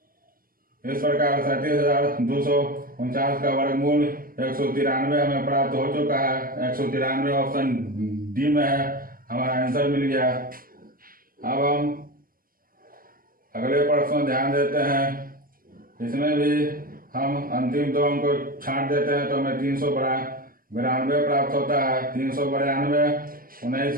इस प्रकार 37,249 का वर्गमूल 193 हमें प्राप्त हो चुका है। 193 ऑप्शन डी में है, हमारा आंसर मिल गया। अब हम अगले प्रश्न ध्यान देते हैं। इसमें भी हम अंतिम 2 अंक को छांट देते हैं तो हमें 392 प्राप्त होता है। 392 19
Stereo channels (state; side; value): late; left; 0.42 ms